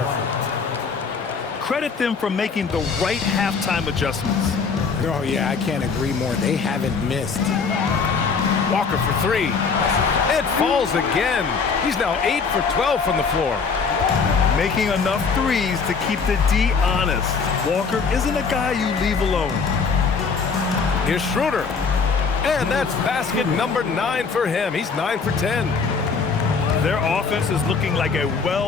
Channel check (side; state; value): right; quieter; 5.2 dB